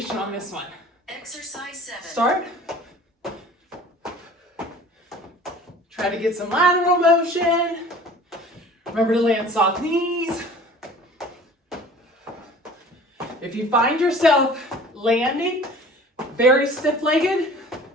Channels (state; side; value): normal; both; correlation 0.46